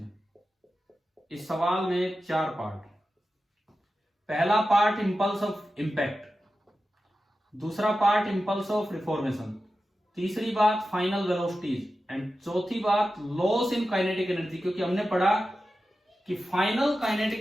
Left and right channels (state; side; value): normal; both; correlation 0.92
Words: इस सवाल में 4 पार्ट। पहला पार्ट इंपल्स ऑफ इंपैक्ट, दूसरा पार्ट इंपल्स ऑफ रिफॉर्मेशन, तीसरी बात फाइनल वेलोसिटीज, एंड चौथी बात लॉस इन काइनेटिक एनर्जी, क्योंकि हमने पढ़ा कि फाइनल काइनेटिक